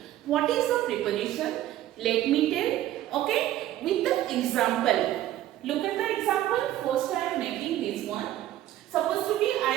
What is a preposition? Let me tell, okay, with the example. Look at the example. First I am making this one. Suppose to be I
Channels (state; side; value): quieter; left; 13.5 dB